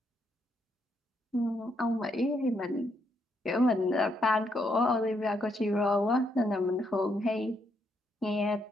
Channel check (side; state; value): both; normal; correlation 0.76